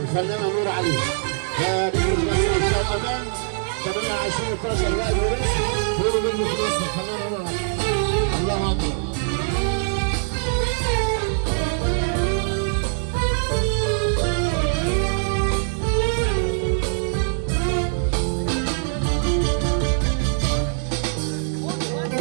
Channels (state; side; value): silent; left; digital silence